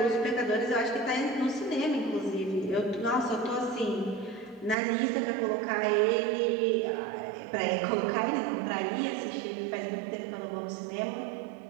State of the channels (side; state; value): left; drops out; at 4.8 s